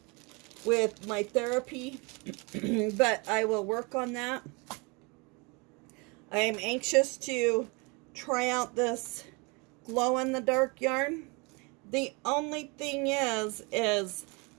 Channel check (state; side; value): quieter; left; 29.2 dB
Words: with my therapy. But I will work on that. I am anxious to try out this glow-in-the-dark yarn. The only thing is